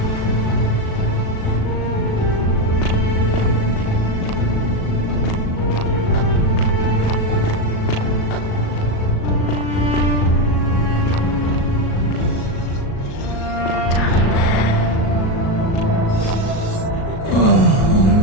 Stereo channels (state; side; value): late; right; 37 ms